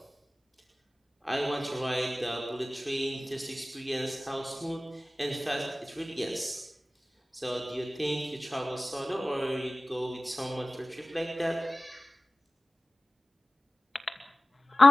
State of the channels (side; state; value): both; normal; correlation 0.97